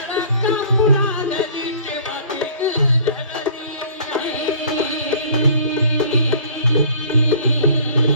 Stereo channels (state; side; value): inverted; both; correlation -0.51